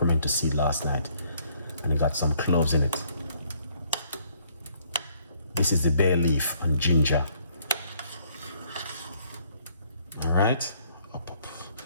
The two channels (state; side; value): inverted; both; correlation -0.65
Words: seed last night and it got some cloves in it. This is the bay leaf and ginger. All right.